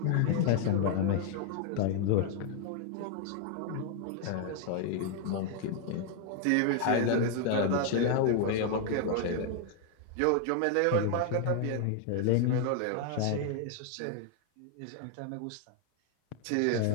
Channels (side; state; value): both; different; correlation 0.00